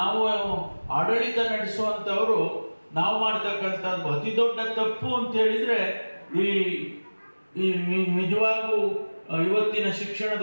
ಆಡಳಿತ ನಡೆಸುವಂಥವರು ನಾವು ಮಾಡ್ತಕ್ಕಂಥದ್ದು ಅತಿ ದೊಡ್ಡ ತಪ್ಪು ಅಂತ ಹೇಳಿದ್ರೆ, ಈ ನಿಜವಾಗೂ ಇವತ್ತಿನ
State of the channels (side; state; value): both; inverted; correlation -1.00